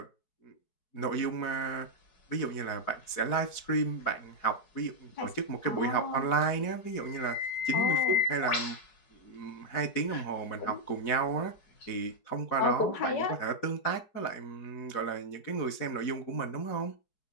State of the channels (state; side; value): late; right; 4.7 ms